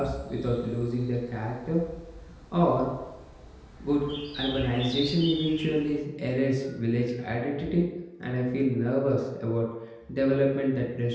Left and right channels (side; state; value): both; identical; correlation 1.00